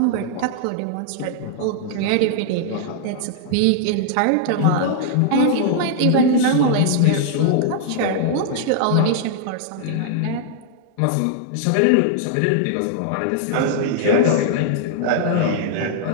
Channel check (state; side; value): different; both; correlation -0.01